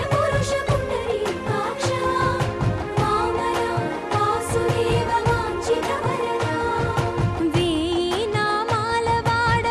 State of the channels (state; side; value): identical; both; correlation 1.00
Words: పురుష పుండరీకాక్ష వామన వాసుదేవ వాంఛిత వరదా వేయి నామాల వాడ